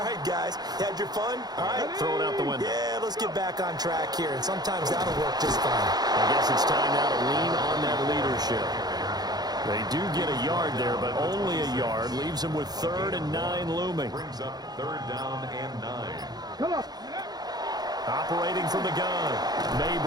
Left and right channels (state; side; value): late; left; 0.19 ms